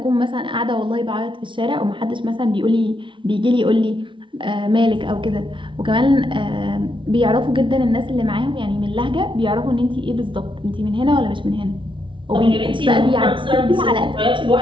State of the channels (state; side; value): late; left; 0.24 ms